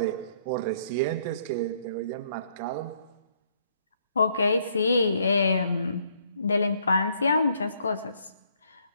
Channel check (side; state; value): both; inverted; correlation -0.67